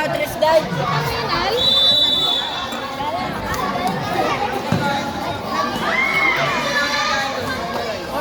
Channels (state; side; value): identical; both; correlation 1.00